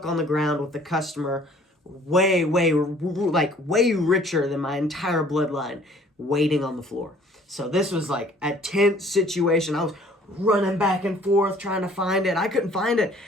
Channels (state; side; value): normal; both; correlation 0.56